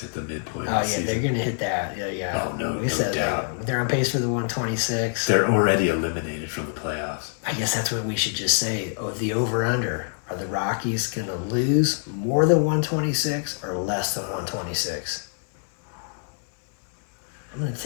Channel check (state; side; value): silent; right; digital silence